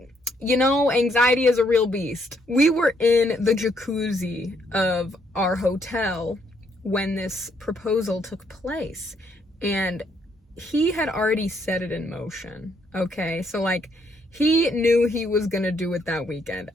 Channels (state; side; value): normal; both; correlation 0.72